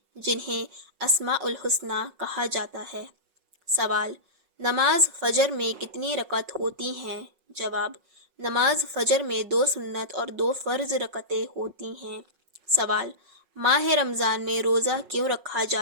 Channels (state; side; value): late; left; 5.4 ms